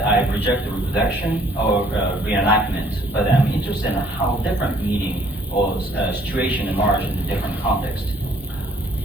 I reject the reproduction or reenactment, but I'm interested in how different meaning or situation emerge in a different context.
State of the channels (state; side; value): normal; both; correlation 0.60